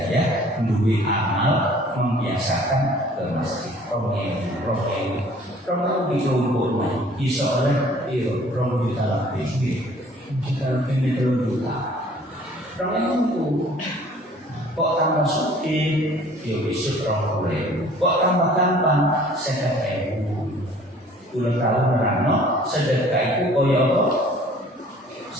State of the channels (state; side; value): normal; both; correlation 0.53